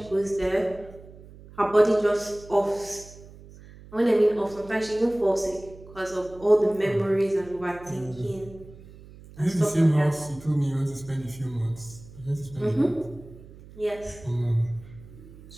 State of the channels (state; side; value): noise; right; hum, 19 dB below the sound